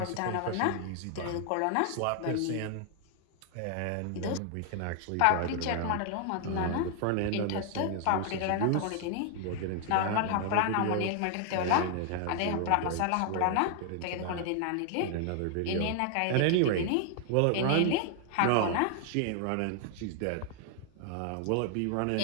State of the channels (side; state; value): both; different; correlation 0.00